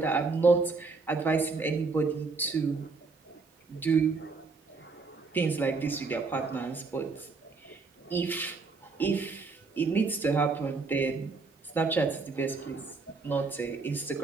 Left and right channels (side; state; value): left; quieter; 4.2 dB